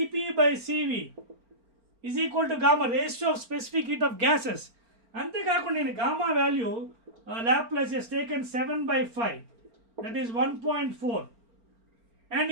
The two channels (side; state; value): left; late; 4.4 ms